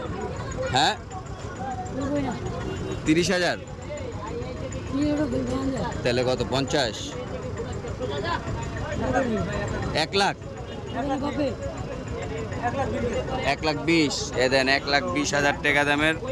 হ্যাঁ, 30,000। তাহলে কত, 50? 1 লাখ? 1,20,000? এ দেন 1,20,000 টাকা দামের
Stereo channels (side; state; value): both; identical; correlation 1.00